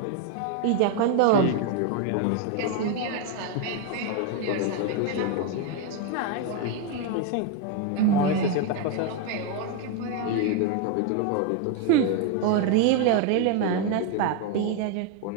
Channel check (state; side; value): different; both; correlation 0.01